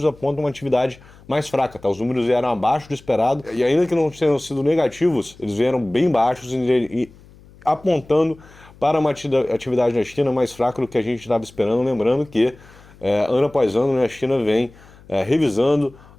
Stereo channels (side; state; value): left; noise; hum, 24 dB below the sound